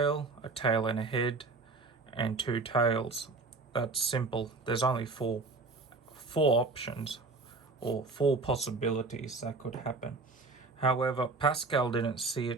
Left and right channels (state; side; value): quieter; left; 3.8 dB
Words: and a head, and 2 tails. That's simple. There's only four options or 4 possibilities that could happen. However, Pascal didn't see